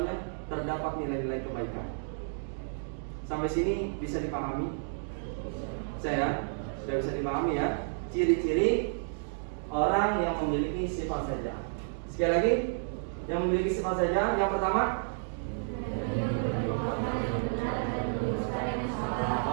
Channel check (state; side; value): silent; left; digital silence